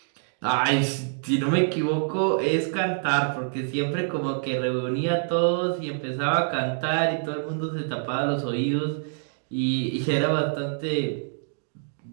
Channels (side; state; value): left; silent; digital silence